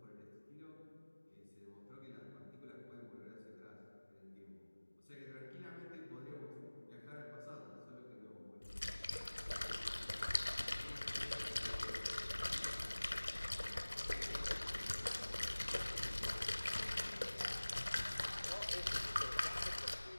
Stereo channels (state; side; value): inverted; both; correlation -1.00